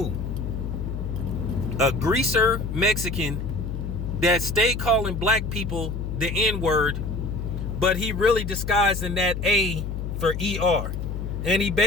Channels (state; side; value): noise; left; hum, 4 dB below the sound